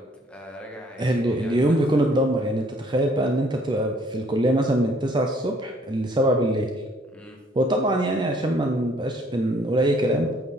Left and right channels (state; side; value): normal; both; correlation 0.61